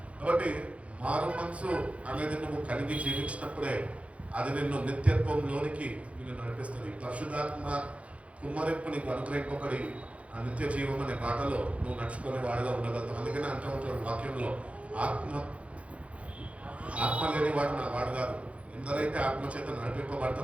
కాబట్టి మారు మనసు అనేది నువ్వు కలిగి జీవించినప్పుడే అది నిన్ను నిత్యత్వంలోనికి నిన్ను నడిపిస్తుంది. పరిశుద్ధాత్మ కుమ్మరింపు నీకు అనుగ్రహింపబడి ఆ నిత్య జీవం అనే బాటలో నువ్వు నడుచుకునే వాడుగా ఉండగలుగుతావు. అందుకనే అంటూ ఉంటాడు వాక్యంలో, ఆత్మ లేని వాడు నా వాడు కాదు, ఎందరైతే ఆత్మ చేత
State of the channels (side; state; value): left; late; 0.063 ms